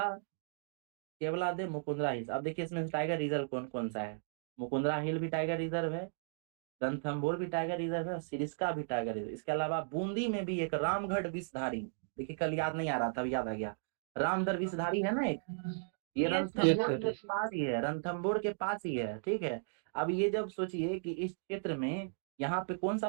केवलादेव, मुकुंदरा हिल्स। अब देखिए इसमें टाइगर रिजर्व कौन कौन सा है? मुकुंदरा हिल भी टाइगर रिजर्व है, रणथंभौर भी टाइगर रिजर्व है और सिरिस्का भी टाइगर रिजर्व। इसके अलावा बूंदी में भी एक रामगढ़ विषधारी, देखिए कल याद नहीं आ रहा था, अब याद आ गया। रामगढ़ विषधारी है ना एक, ये यस यस रणथंभौर सर। के पास ही है, रणथंभौर के पास ही है। ठीक है, अब ये जब सोचिए कि इस क्षेत्र में यहाँ पे कौन सा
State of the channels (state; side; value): silent; left; digital silence